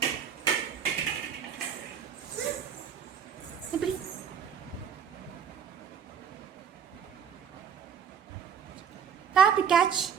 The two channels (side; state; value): left; quieter; 7.6 dB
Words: இப்படி காப்பி கேட்ச்,